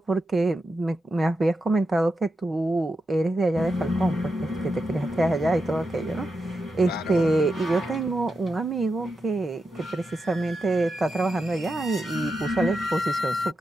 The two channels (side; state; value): both; normal; correlation 0.87